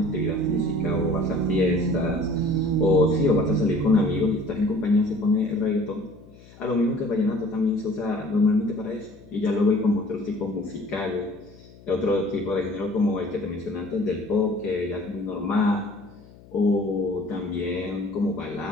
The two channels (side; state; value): left; noise; hum, 23 dB below the sound